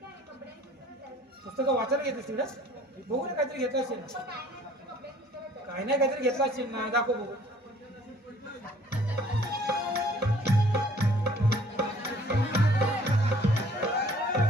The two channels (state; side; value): normal; both; correlation 0.55